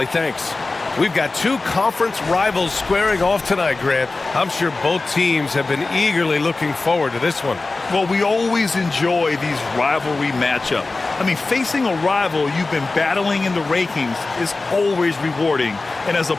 thanks. We've got two conference rivals squaring off tonight, Grant. I'm sure both teams have been eagerly looking forward to this one. Well, we always enjoy these rivalry matchups. I mean, facing a rival you've been battling in the rankings is always rewarding. And as a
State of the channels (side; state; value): right; quieter; 3.5 dB